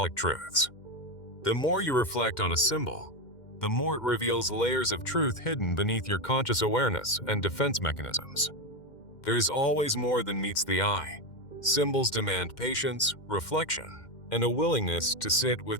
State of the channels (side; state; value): right; late; 2.1 ms